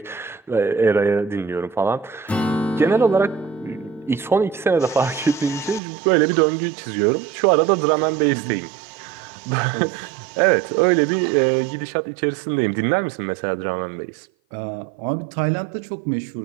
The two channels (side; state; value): left; drops out; at 5.8 s